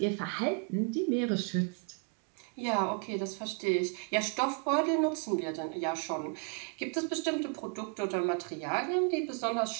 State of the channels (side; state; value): left; quieter; 35.7 dB